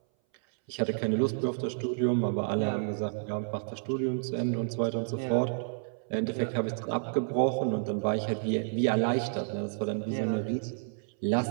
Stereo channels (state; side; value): silent; left; 58 dB below the other